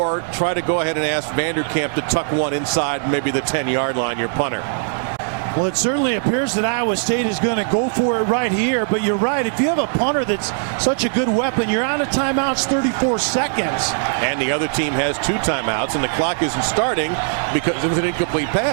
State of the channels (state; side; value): silent; left; digital silence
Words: try to go ahead and ask Vanderkamp to tuck one inside maybe the 10-yard line, your punter. Well, it certainly appears that Iowa State is going to go for it right here, but you're right. If you have a punter that's such a good weapon, you're out of timeouts 34 seconds. And the other team has 2 timeouts, and the clock isn't starting because it was an incomplete